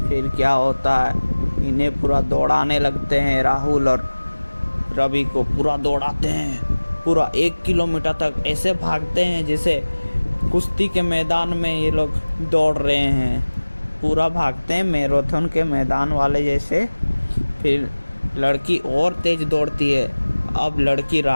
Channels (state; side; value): inverted; both; correlation -1.00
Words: फिर क्या होता है, इन्हें पूरा दौड़ाने लगते हैं, राहुल और रवि को पूरा दौड़ाते हैं, पूरा 1 किलोमीटर तक ऐसे भागते हैं जैसे कुश्ती के मैदान में ये लोग दौड़ रहे हैं, पूरा भागते हैं मैराथन के मैदान वाले जैसे। फिर लड़की और तेज़ दौड़ती है, अब लड़की